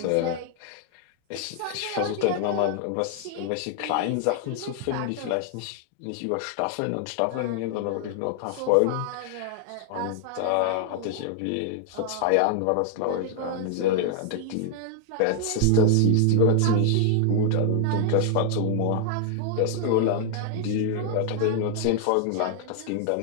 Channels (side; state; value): both; different; correlation 0.00